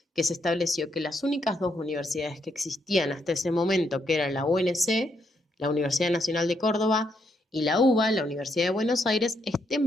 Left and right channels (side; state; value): both; normal; correlation 0.77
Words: que se estableció que las únicas dos universidades que existían hasta ese momento, que eran la UNC, la Universidad Nacional de Córdoba, y la UBA, la Universidad de Buenos Aires,